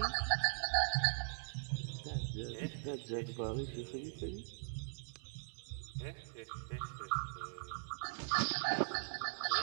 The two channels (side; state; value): left; silent; digital silence